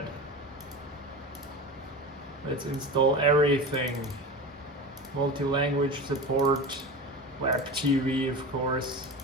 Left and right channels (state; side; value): normal; both; correlation 0.29